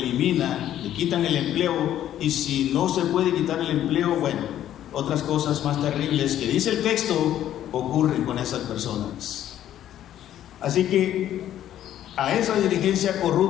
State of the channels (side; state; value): right; quieter; 11.7 dB